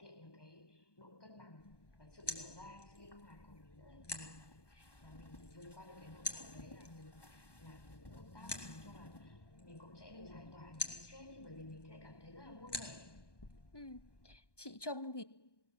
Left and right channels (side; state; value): right; late; 1.2 ms